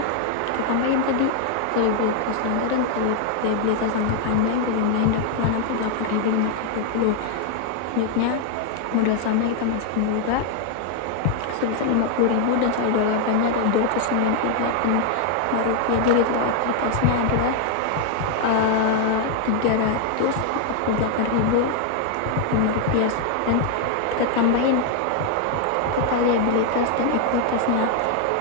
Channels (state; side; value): different; both; correlation 0.00